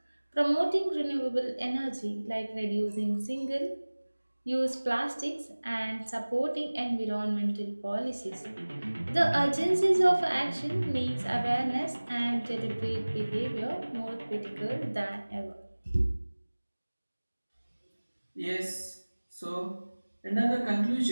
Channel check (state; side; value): inverted; both; correlation -1.00